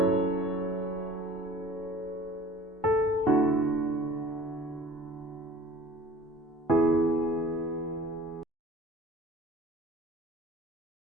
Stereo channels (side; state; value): both; normal; correlation 0.46